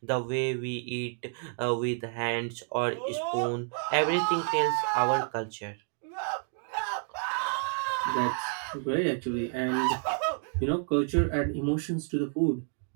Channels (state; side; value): silent; left; 57 dB below the other